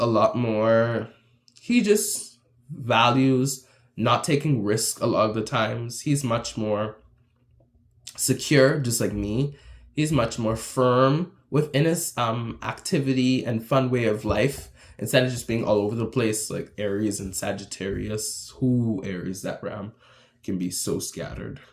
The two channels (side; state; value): both; identical; correlation 1.00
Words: lot more. He just values not taking risks a lot of the times. He's much more secure, just like me. He's much more firm within his activity and fun way of life, instead of just being all over the place like Aries and Sagittarius. Aries, that ram can be so scattered.